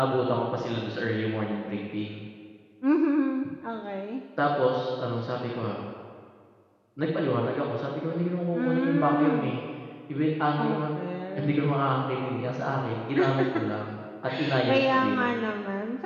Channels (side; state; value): both; identical; correlation 1.00